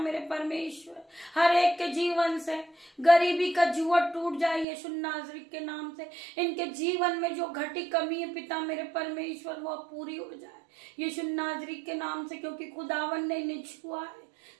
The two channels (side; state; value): left; drops out; at 4.7 s